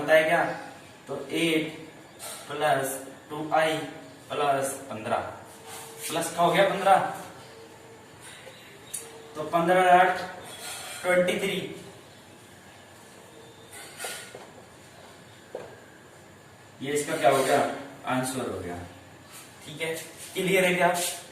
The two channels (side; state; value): both; identical; correlation 1.00